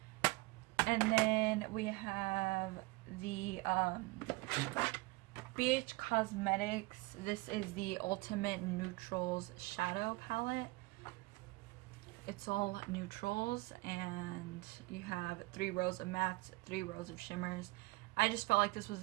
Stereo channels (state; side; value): quieter; left; 23.0 dB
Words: And then we have the BH Cosmetics. This is the Ultimate Neutrals Shadow Palette. It's all neutrals, and you have 3 rows of mattes, 3 rows of shimmers. I just felt like this was